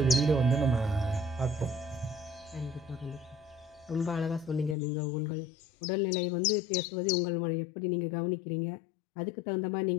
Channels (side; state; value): right; drops out; at 4.8 s